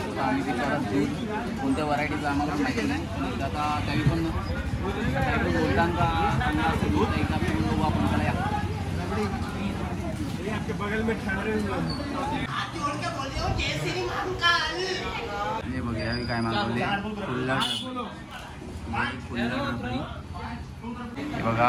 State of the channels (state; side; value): identical; both; correlation 1.00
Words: आम्ही विचारत दूध कोणत्या व्हरायटीचं आम्हाला माहिती नाही. आता काही पण बोलताना चांगला असं दूध एकदा पिऊन बघू आपण. त्याला हे बघा यावी काय मागवले. हे बघा